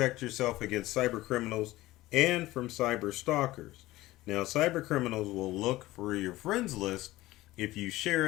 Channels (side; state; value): right; quieter; 17.4 dB